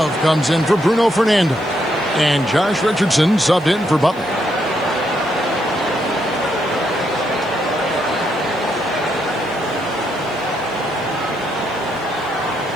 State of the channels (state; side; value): noise; left; hiss, 28 dB below the sound